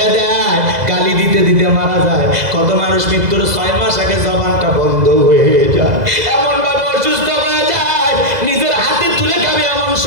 দেয়, গালি দিতে দিতে মারা যায়। কত মানুষ মৃত্যুর 6 মাস আগে জবানটা বন্ধ হয়ে যায়, এমন ভাবে অসুস্থ হয়ে যায়, নিজের হাতে তুলে খাবে এমন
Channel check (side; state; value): left; late; 2.0 ms